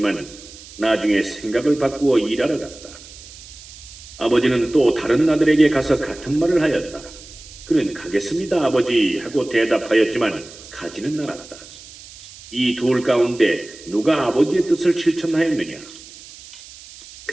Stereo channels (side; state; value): right; noise; hiss, 18 dB below the sound